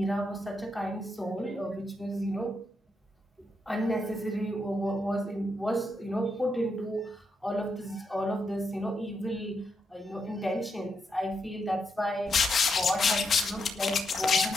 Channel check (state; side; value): normal; both; correlation 0.81